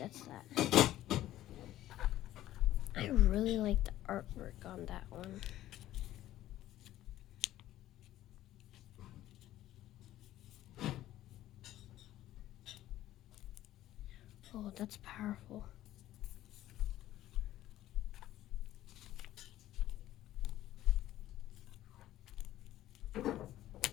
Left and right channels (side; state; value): right; quieter; 14.0 dB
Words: that. I really like the artwork on that one. Oh, that's powerful.